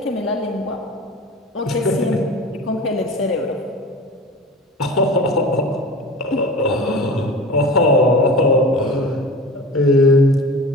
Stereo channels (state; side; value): normal; both; correlation 0.35